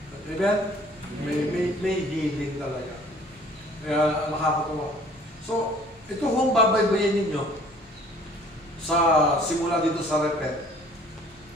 Amen? May healing talaga. Kaya nakakatuwa. So, ito kung babaybayin ninyo sa simula dito sa Repent.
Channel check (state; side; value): normal; both; correlation 0.53